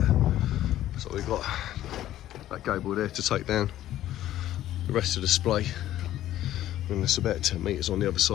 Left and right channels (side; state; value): right; quieter; 13.2 dB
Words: So we've got that gable there to take down. The rest of the display and it's about 10 metres on the other